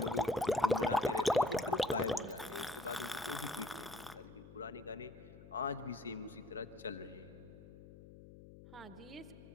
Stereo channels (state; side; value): noise; left; hum, 17 dB below the sound